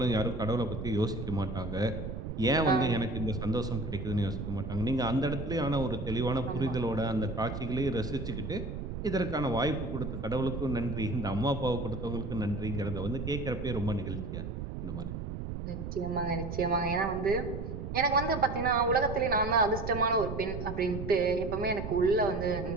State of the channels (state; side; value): noise; right; rumble, 6 dB below the sound